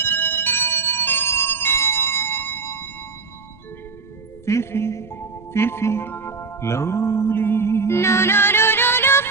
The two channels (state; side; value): quieter; left; 4.5 dB